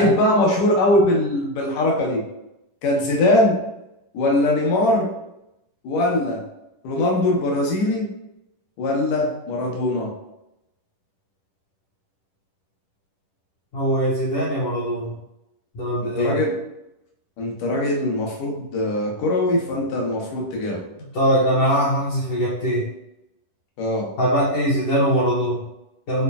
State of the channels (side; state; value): right; late; 10 ms